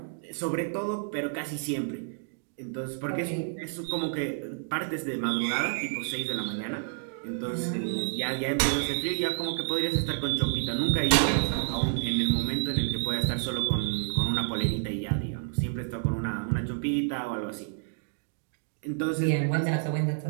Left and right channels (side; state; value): left; silent; digital silence